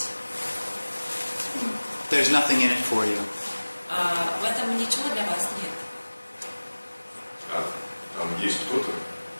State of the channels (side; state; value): both; inverted; correlation -1.00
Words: There's nothing in it for you. В этом ничего для вас нет. А там есть кто-то?